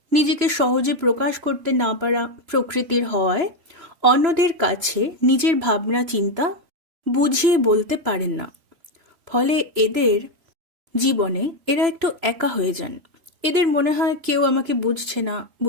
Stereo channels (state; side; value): late; left; 3.0 ms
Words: নিজেকে সহজে প্রকাশ করতে না পারা প্রকৃতির হওয়ায় অন্যদের কাছে নিজের ভাবনা চিন্তা বুঝিয়ে বলতে পারেন না। ফলে এদের জীবনে এরা একটু একা হয়ে যান। এদের মনে হয় কেউ আমাকে বুঝছে না,